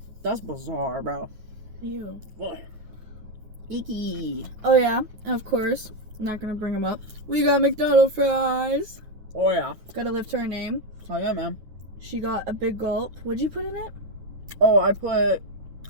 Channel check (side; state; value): left; late; 9.4 ms